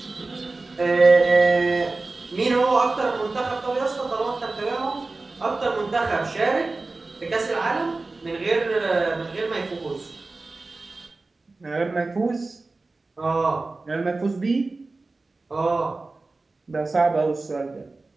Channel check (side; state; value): left; quieter; 3.4 dB